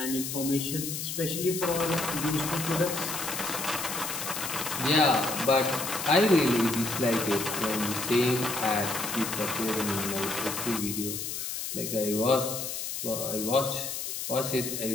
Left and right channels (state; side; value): noise; left; hiss, 4 dB below the sound